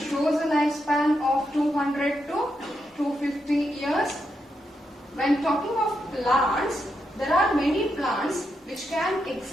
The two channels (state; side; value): normal; both; correlation 0.83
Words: shows a lifespan of 200 to 250 years. When talking of plants, there are many plants which can